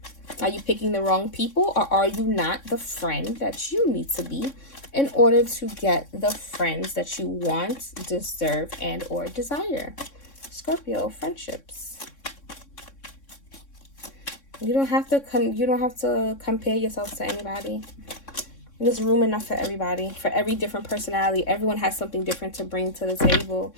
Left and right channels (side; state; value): right; late; 3.6 ms